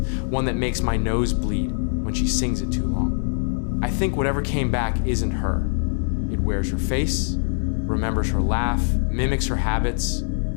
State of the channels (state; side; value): silent; right; digital silence